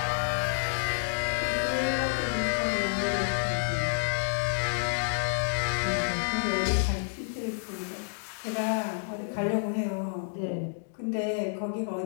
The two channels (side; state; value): right; silent; digital silence